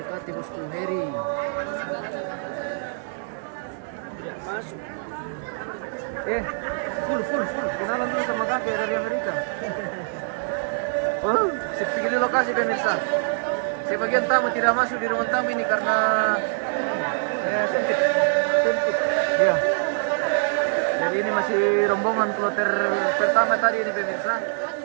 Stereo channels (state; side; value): silent; left; digital silence